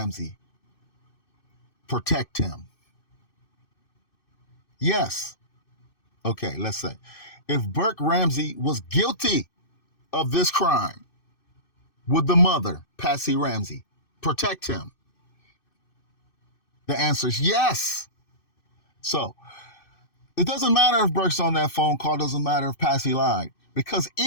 protect him? Yes. Okay, let's say. If Burke Ramsey was guilty of this crime, would the mother, Patsy Ramsey, protect him? The answer is yes. So, it doesn't matter if Burke's on that phone call. It doesn't matter if Patsy lied. Because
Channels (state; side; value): late; right; 2.6 ms